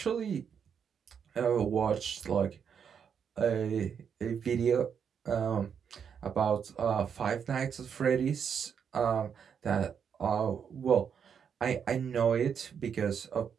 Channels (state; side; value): quieter; left; 7.4 dB